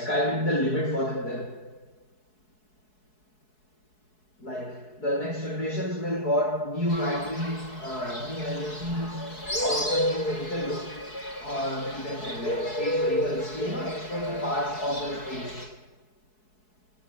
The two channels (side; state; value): right; late; 4.7 ms